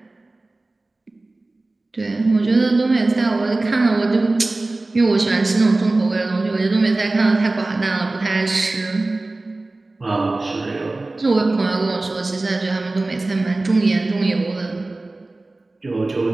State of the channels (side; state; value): left; quieter; 3.0 dB